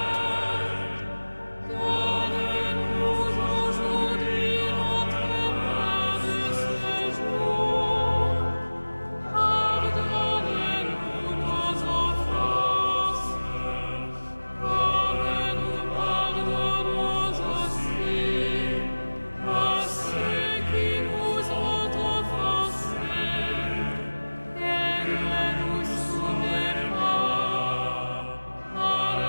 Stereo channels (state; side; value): inverted; both; correlation -1.00